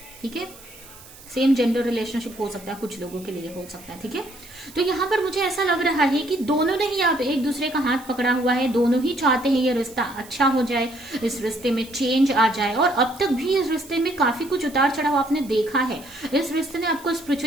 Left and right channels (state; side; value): noise; right; hiss, 20 dB below the sound